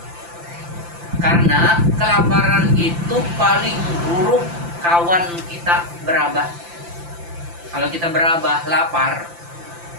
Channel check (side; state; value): left; late; 5.8 ms